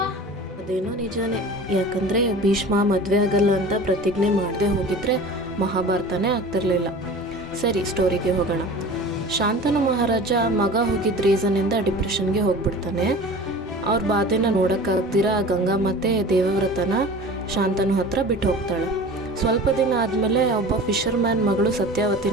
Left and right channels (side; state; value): both; normal; correlation 0.39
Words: ಅದೇನೋ ನಿಜಾನೇ. ಯಾಕಂದ್ರೆ ಭೀಷ್ಮ ಮದುವೆ ಆಗಲ್ಲ ಅಂತ ಪ್ರತಿಜ್ಞೆ ಮಾಡದೆ ಹೋಗಿದ್ರೆ ಮಹಾಭಾರತನೇ ಆಗ್ತಿರ್ಲಿಲ್ಲ. ಸರಿ, ಸ್ಟೋರಿಗೆ ಹೋಗೋಣ. ಶಾಂತನು ಮಹಾರಾಜ ಮಗ ಹೋಗಿದ್ದ ರೀಸನ್ನಿಂದ ಡಿಪ್ರೆಷನ್ಗೆ ಹೋಗ್ಬಿಡ್ತಾನೆ. ಅವ್ರ ಬಾಧೆನ ನೋಡೋಕ್ಕಾಗ್ದಿರ ಗಂಗಾ ಮತ್ತೆ ದೇವವ್ರತನ ಶಾಂತನು ಹತ್ರ ಬಿಟ್ಟು ಹೋಗ್ತಾಳೆ. ಸ್ವಲ್ಪ ದಿನ ಆದಮೇಲೆ ಒಬ್ಬ ಫಿಶರ್ಮ್ಯಾನ್ ಮಗಳು